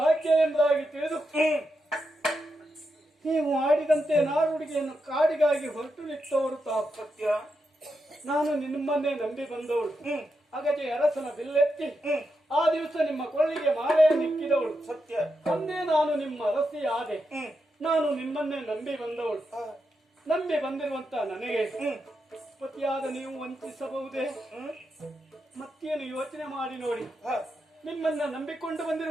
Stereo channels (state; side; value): normal; both; correlation 0.85